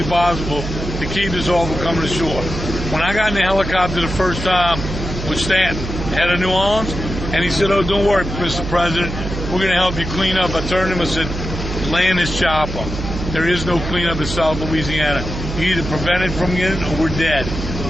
possible to keep this all from coming ashore. When I got in the helicopter the first time with Stanton, head of New Orleans, and he said, oh, don't worry, Mr. President, we're going to help you clean up. I turned to him and said, land this chopper. There is no cleanup in South Louisiana. You either prevent it from getting or we're dead.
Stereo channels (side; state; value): right; noise; hum, 6 dB below the sound